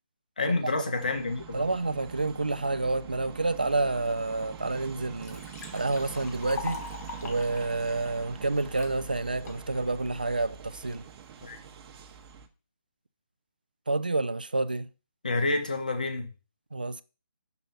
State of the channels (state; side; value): inverted; both; correlation -0.81